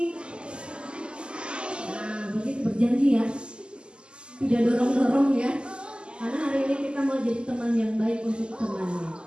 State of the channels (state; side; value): late; left; 0.050 ms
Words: Nah, begitu berjanji ya. Tidak dorong-dorong ya. Karena hari ini kita mau jadi teman yang baik untuk temannya.